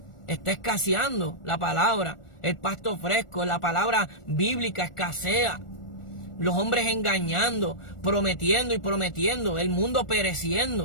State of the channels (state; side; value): late; right; 1.4 ms